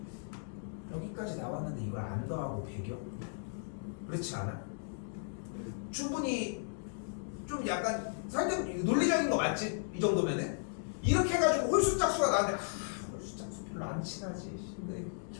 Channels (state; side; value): silent; right; digital silence